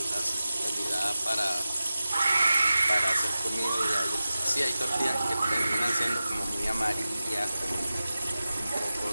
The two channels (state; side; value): inverted; both; correlation -0.95